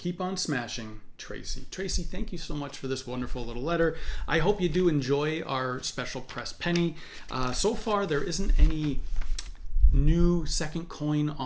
on smashing, Tracy. Tracy, thank you so much for this wonderful little letter. I hope you do enjoy our special press penny. So far, there isn't any new second coin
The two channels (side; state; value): both; identical; correlation 1.00